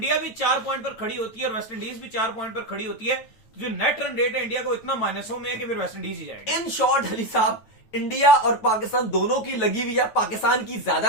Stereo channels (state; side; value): late; right; 9.3 ms